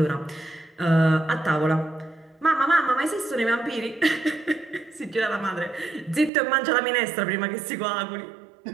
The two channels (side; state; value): left; drops out; at 6.3 s